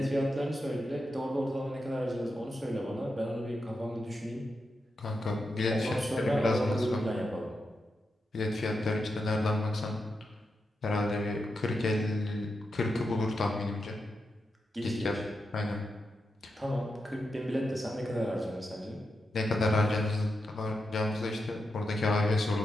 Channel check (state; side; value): normal; both; correlation 0.87